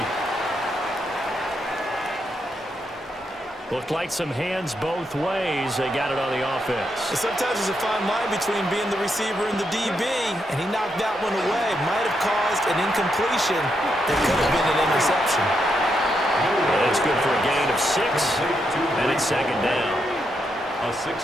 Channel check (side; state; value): both; normal; correlation 0.81